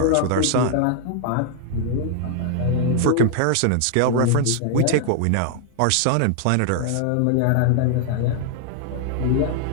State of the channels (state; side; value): different; both; correlation 0.00